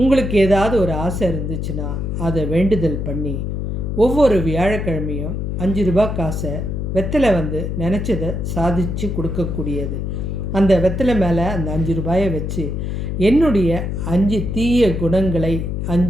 ஏதாவது ஒரு ஆசை இருந்துச்சுன்னா அதை வேண்டுதல் பண்ணி ஒவ்வொரு வியாழக்கிழமையும் 5 ரூபாய் காசை வெத்தலை நினச்சதை சாதித்து கொடுக்கக்கூடியது. அந்த வெத்தலை மேலே அந்த 5 ரூபாயை வச்சு என்னுடைய 5 தீய குணங்களை,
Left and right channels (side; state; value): left; noise; hum, 3 dB below the sound